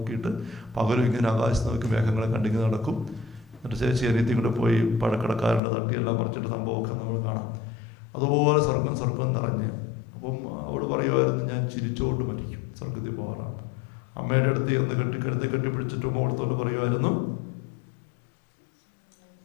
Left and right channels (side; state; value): right; drops out; at 5.6 s